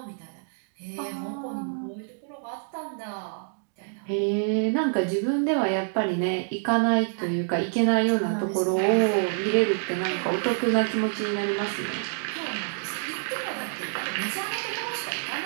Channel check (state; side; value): silent; left; digital silence